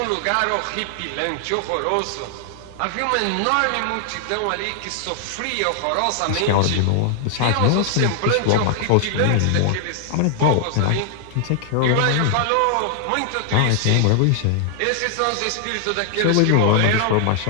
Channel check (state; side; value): different; both; correlation 0.00